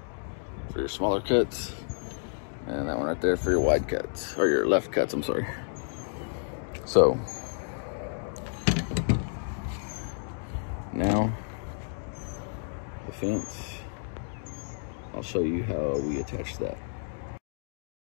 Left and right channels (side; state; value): right; silent; digital silence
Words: for your smaller cuts. And that one right there for your wide cuts, or your left cuts, I'm sorry. So, now, the fence, I'll show you how we attach that.